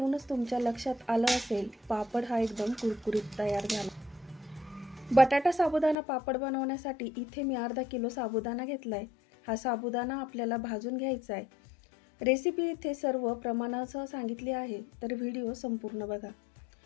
तुमच्या लक्षात आलं असेल, पापड हा एकदम कुरकुरीत तयार झाला। बटाटा साबुदाणा पापड बनवण्यासाठी इथे मी अर्धा किलो साबुदाणा घेतलाय। हा साबुदाणा आपल्याला भाजून घ्यायचा आहे। रेसिपी इथे सर्व प्रमाणासह सांगितली आहे, तर व्हिडिओ संपूर्ण बघा।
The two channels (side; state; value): right; drops out; at 6.0 s